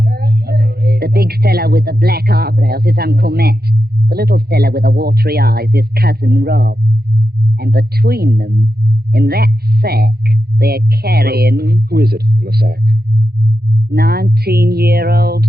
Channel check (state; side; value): late; left; 0.46 ms